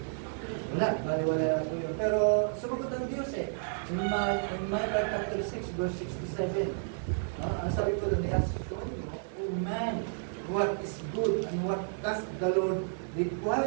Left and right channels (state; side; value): silent; left; 57 dB below the other